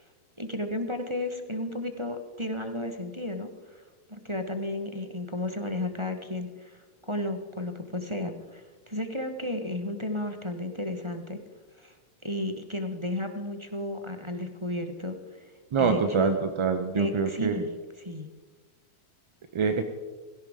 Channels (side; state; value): left; late; 1.4 ms